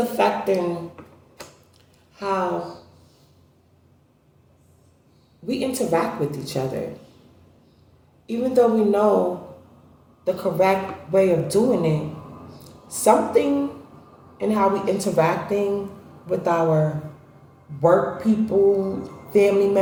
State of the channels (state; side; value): identical; both; correlation 1.00